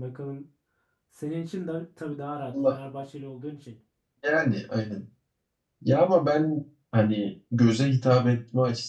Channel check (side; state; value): both; identical; correlation 1.00